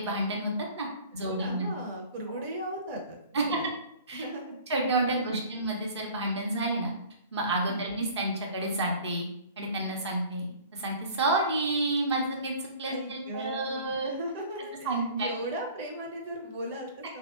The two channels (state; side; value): inverted; both; correlation -0.46